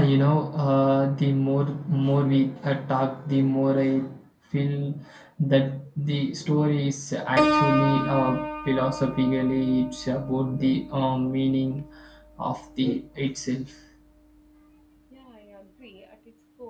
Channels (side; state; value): both; identical; correlation 1.00